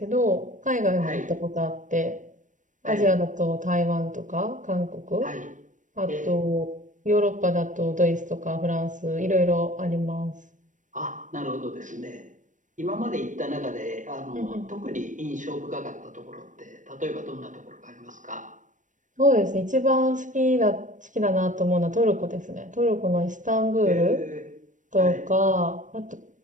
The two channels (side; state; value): left; late; 0.37 ms